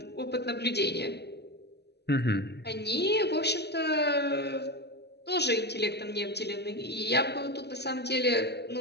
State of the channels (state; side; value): late; right; 0.49 ms